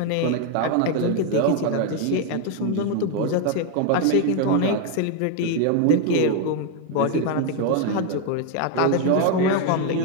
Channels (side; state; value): both; different; correlation 0.01